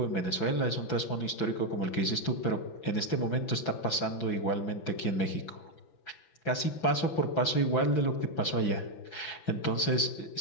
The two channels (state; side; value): late; right; 6.0 ms